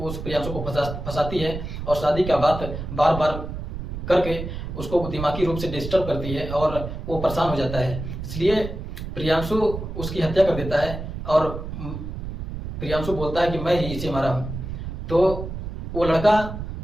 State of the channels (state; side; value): noise; right; rumble, 7 dB below the sound